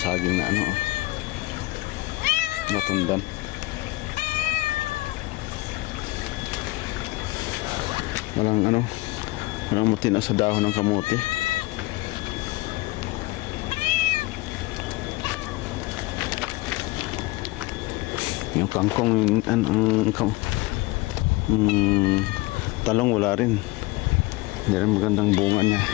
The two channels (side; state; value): right; quieter; 21.3 dB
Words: saging na natundan. Walang matino sa dahon ng kamote. Yung kangkong, talong wala rin. Hindi rin magandang bunga niya.